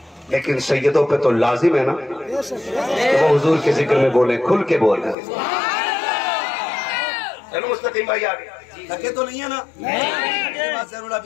लेकिन सैयदों पे तो लाजिम है ना कि वो हुजूर के जिक्र में बोले, खुल के बोले। चलो मुस्तकीम भाई आगे थके तो नहीं है ना? ज़रूर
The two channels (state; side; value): drops out; right; at 5.2 s